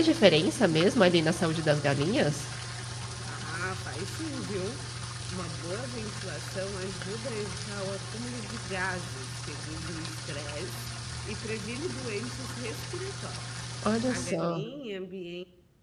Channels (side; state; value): both; identical; correlation 1.00